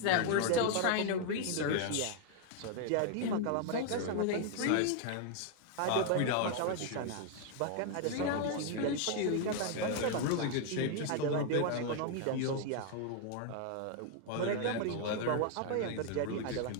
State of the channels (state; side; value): different; both; correlation 0.00